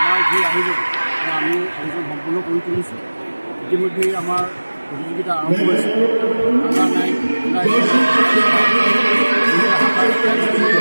যি আয়োজন আমি আয়োজন সম্পূৰ্ণ কৰি তুলিছোঁ। ইতিমধ্যে আমাৰ প্ৰতিযোগিতা আৰম্ভ হৈছে।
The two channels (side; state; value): both; inverted; correlation -1.00